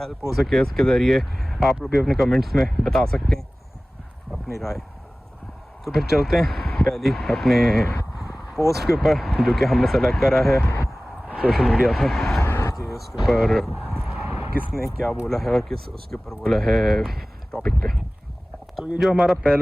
हो सके। उसके ज़रिए आप लोग भी अपने कमेंट्स में बता सकते हैं अपनी राय। तो फिर चलते हैं पहली अपने पोस्ट के ऊपर जो कि हमने सेलेक्ट करा है सोशल मीडिया से कि उसके ऊपर किसने क्या बोला है और किस उसके ऊपर बोला है टॉपिक पे। तो ये जो हमारा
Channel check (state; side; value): normal; both; correlation 0.98